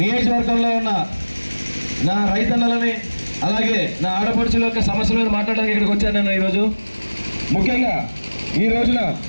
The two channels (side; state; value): both; inverted; correlation -1.00